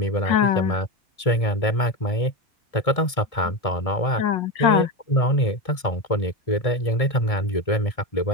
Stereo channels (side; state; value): right; late; 1.7 ms